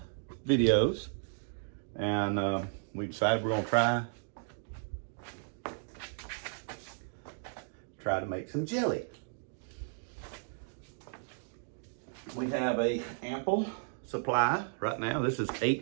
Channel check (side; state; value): left; silent; digital silence